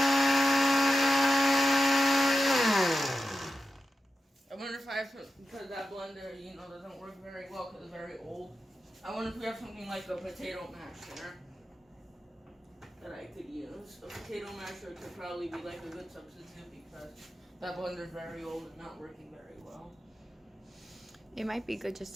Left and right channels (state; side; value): normal; both; correlation 0.91